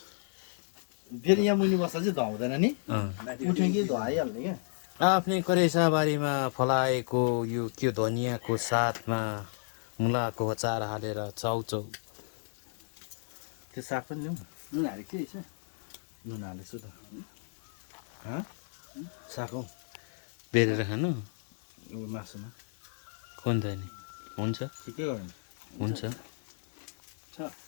फेरि यहाँ मुनि बस्दा चाहिँ धुवाउँदैन नि उठ्यो कि धुवाइहाल्ने क्या आफ्नै करेसाबारीमा फलाएको यो के धनियाँको साथमा मुलाको अचार हालेर चाउचाउ त्यो साग पनि ल्याउँ नुन हालेको थियो यसो नुन हालेछु त साग हौ बेरेर खानु मासुमा कुन त नि हुन्छ ठिकै हो हुन्छ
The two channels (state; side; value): silent; right; digital silence